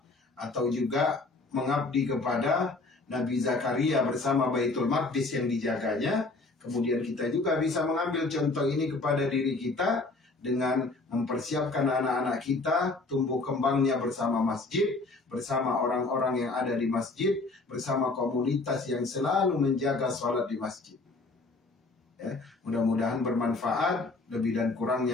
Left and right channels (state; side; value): quieter; right; 3.4 dB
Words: atau juga mengabdi kepada Nabi Zakaria bersama Baitul Maqdis yang dijaganya. Kemudian kita juga bisa mengambil contoh ini kepada diri kita dengan mempersiapkan anak-anak kita tumbuh kembangnya bersama masjid, bersama orang-orang yang ada di masjid, bersama komunitas yang selalu menjaga sholat di masjid. Ya, mudah-mudahan bermanfaat. Lebih dan